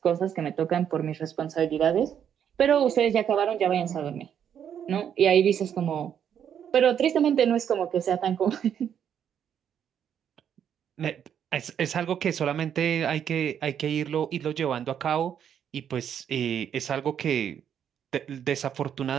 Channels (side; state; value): left; quieter; 8.8 dB